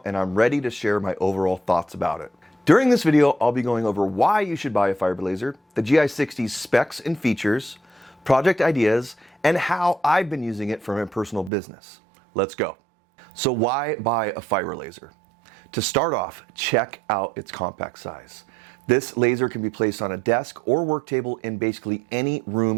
and I'm ready to share my overall thoughts about it. During this video, I'll be going over why you should buy a fiber laser, the GI60's specs and features, project ideas, and how I've been using it for my personal business. Let's go. So why buy a fiber laser? To start off, check out its compact size. This laser can be placed on a desk or work table in basically any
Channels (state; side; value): drops out; left; at 11.5 s